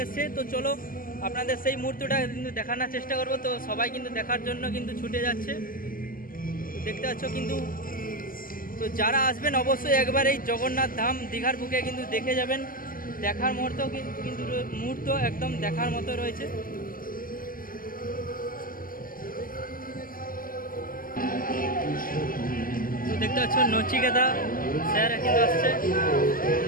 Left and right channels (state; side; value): late; right; 0.41 ms